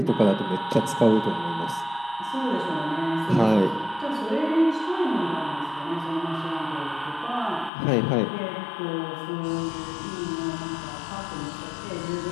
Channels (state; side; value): drops out; right; at 7.7 s